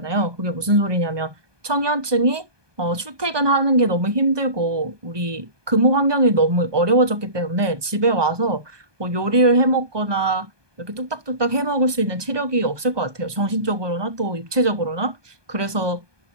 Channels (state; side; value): late; left; 1.2 ms